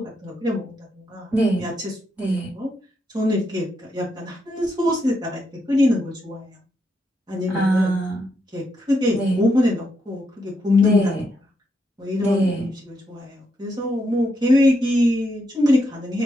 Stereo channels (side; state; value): both; normal; correlation 0.80